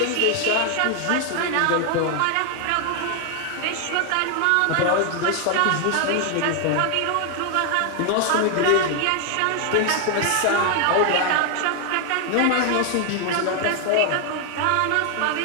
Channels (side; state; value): both; different; correlation 0.00